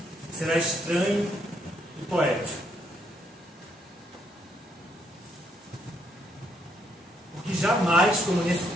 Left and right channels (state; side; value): normal; both; correlation 0.73